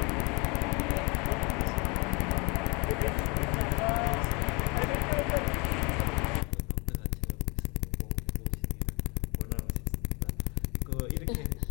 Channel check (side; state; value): right; quieter; 29.4 dB